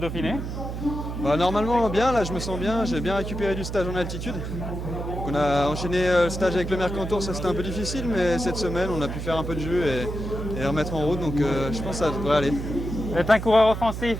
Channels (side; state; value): right; noise; hum, 6 dB below the sound